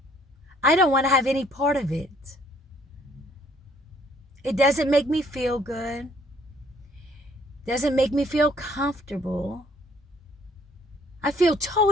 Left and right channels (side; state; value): both; normal; correlation 0.62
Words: I don't want to have any part of it. It doesn't make me feel good. Doesn't make me feel comfortable. I feel